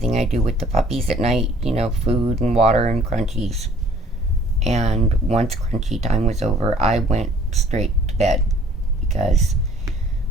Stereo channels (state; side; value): normal; both; correlation 0.56